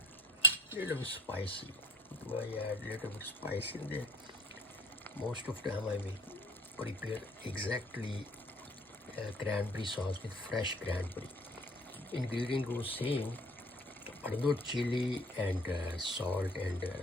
little bit spicy. Do I add a little bit spice in there? Most of the time I will prepare exactly cranberry sauce with fresh cranberry. Ingredient goes same, but not chili and salt and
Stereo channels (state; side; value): normal; both; correlation 0.49